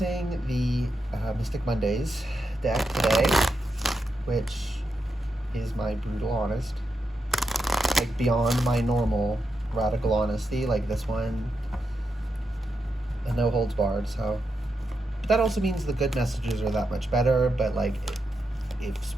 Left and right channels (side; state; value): both; normal; correlation 0.85